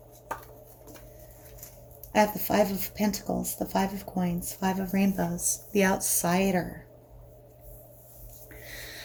I have the Five of Pentacles, the Five of Coins, Five of Rainbows, the outsider.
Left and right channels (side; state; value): both; identical; correlation 1.00